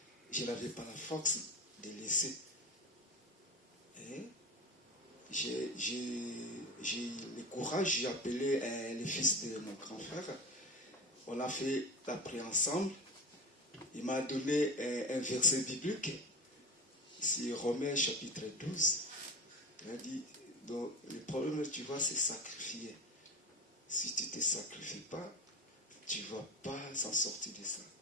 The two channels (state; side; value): normal; both; correlation 0.26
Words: je n'avais pas la force de laisser. Et j'ai le courage, j'ai appelé le fils de mon grand frère. On a fait la prière ensemble. Il m'a donné un verset biblique. C'est Romains chapitre 12. Il a dit, donc, le problème, tu vois, c'est sacrifier. Si tu ne te sacrifies pas, tu ne vas pas s'en sortir de ça.